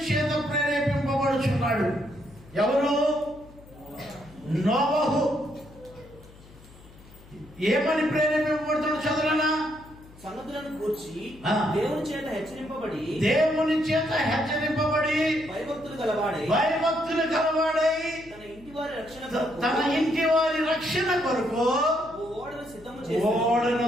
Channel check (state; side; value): noise; left; hum, 22 dB below the sound